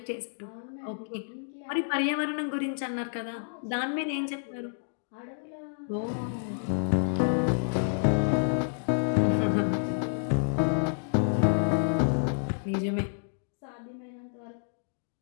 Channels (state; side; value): silent; right; digital silence